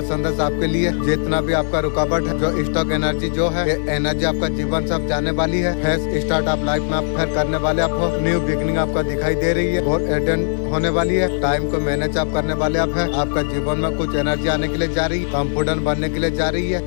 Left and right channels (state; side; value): silent; right; 57 dB below the other